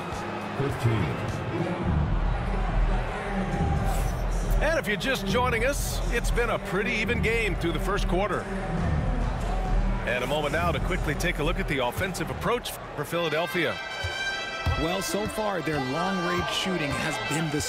15. And if you're just joining us, it's been a pretty even game through the first quarter. And a moment now to quickly take a look at the offensive approach for Philadelphia. Well, so far, their long-range shooting has been the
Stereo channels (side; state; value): both; identical; correlation 1.00